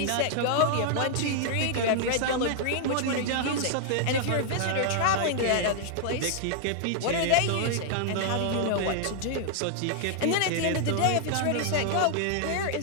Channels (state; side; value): different; both; correlation -0.01